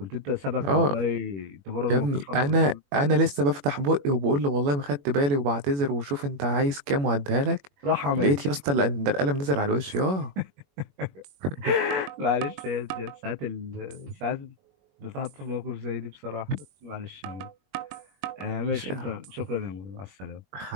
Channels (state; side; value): late; left; 21 ms